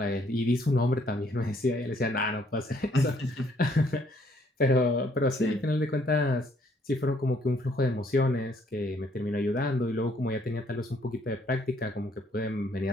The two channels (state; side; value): normal; both; correlation 0.66